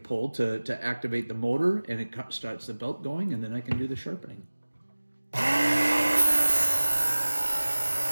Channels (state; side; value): inverted; both; correlation -1.00